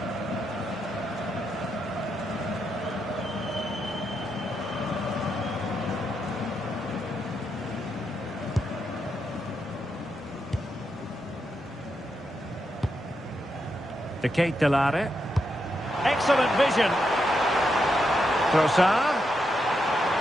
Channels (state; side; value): normal; both; correlation 0.83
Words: De Lare. Excellent vision. Trossard.